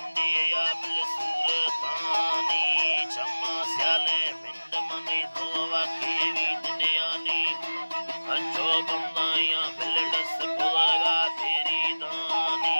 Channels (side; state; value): both; inverted; correlation -1.00